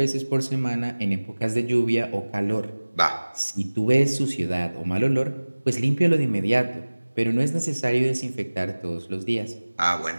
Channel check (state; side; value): inverted; both; correlation -1.00